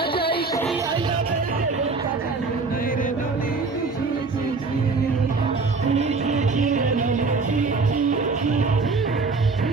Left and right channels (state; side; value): quieter; left; 4.2 dB